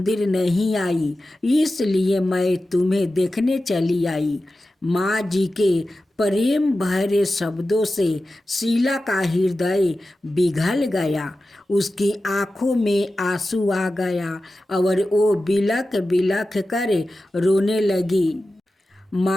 नहीं आई, इसलिए मैं तुम्हें देखने चली आई। माँ जी के प्रेम भरे शब्दों से शीला का हृदय पिघल गया। उसकी आंखों में आंसू आ गया और वो बिलख बिलख कर रोने लगी।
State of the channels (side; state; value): both; normal; correlation 0.93